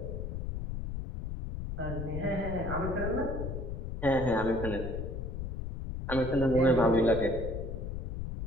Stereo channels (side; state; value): left; noise; rumble, 5 dB below the sound